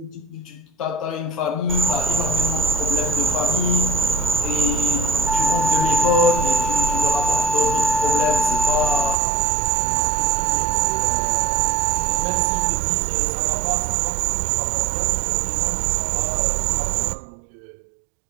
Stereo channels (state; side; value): drops out; left; at 9.2 s